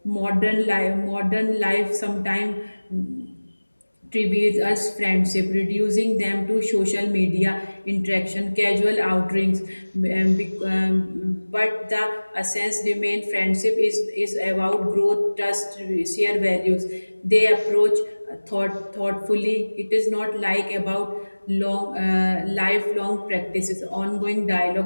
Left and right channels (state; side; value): inverted; both; correlation -1.00